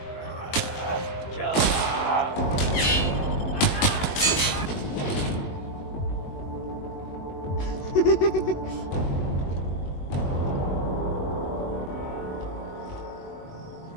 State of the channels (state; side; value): late; right; 21 ms